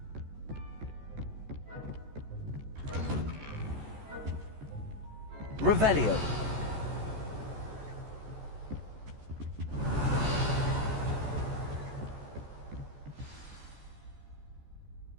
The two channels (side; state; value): left; late; 14 ms